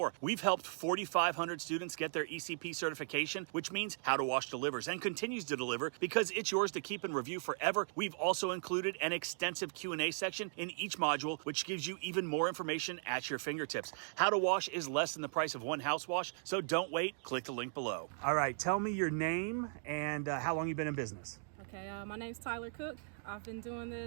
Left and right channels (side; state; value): left; silent; digital silence